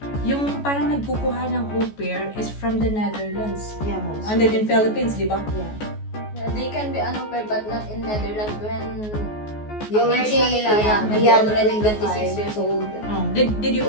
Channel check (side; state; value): right; late; 14 ms